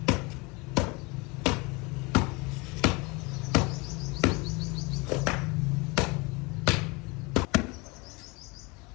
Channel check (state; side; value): quieter; right; 26.8 dB